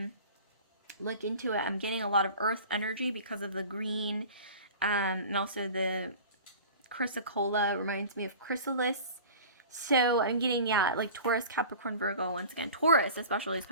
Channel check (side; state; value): both; inverted; correlation -0.40